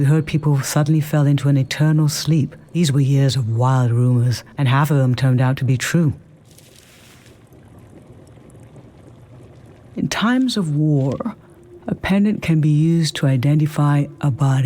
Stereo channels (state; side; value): identical; both; correlation 1.00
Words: heard people suddenly fell into an eternal sleep. These were years of wild rumors, and half of them turned out to be true. In times of war, a pendant can be used to identify a